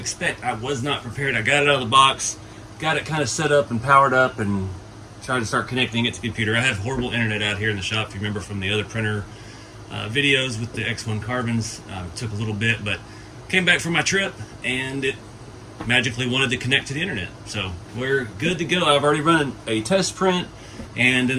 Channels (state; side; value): identical; both; correlation 1.00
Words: I was not prepared. I got it out of the box, got it kind of set up and powered up, and tried to start connecting it to the computer. I have horrible internet out here in the shop, if you remember from the other printer videos with the X1 carbons. It took a little bit, but came back from my trip and it magically wanted to connect to the internet. So we're good to go. I've already run a test print, and